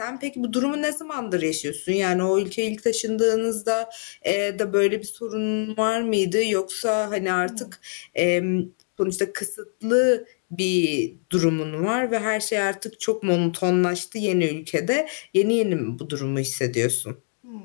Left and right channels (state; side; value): silent; right; digital silence